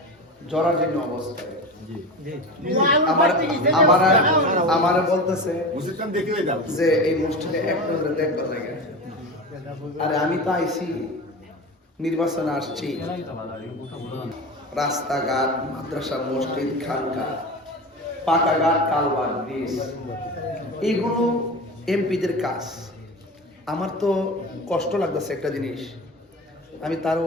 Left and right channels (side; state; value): both; normal; correlation 0.29